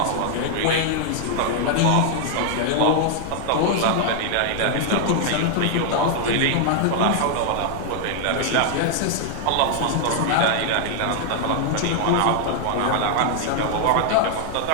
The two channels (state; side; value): different; both; correlation 0.00